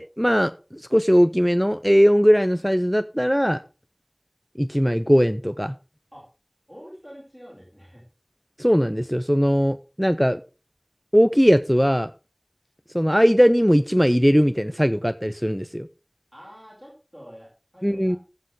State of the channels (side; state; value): both; identical; correlation 1.00